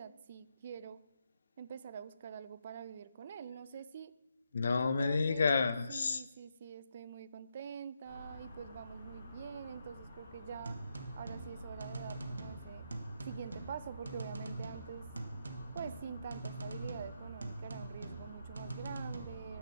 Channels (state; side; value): inverted; both; correlation -0.81